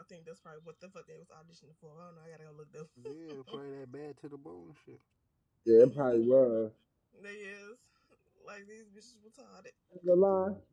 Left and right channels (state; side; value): identical; both; correlation 1.00